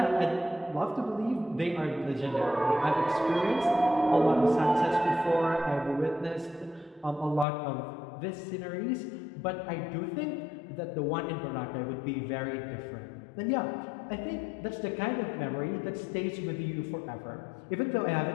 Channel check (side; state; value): right; drops out; at 7.5 s